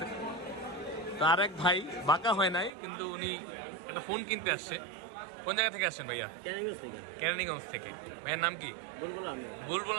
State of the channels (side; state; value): left; drops out; at 2.7 s